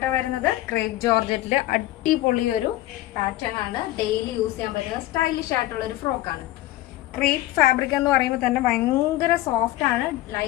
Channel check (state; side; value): quieter; right; 16.0 dB